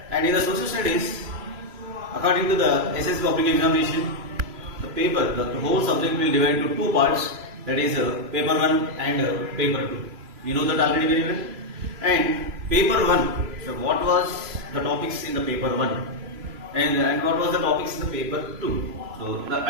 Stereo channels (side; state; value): left; late; 3.0 ms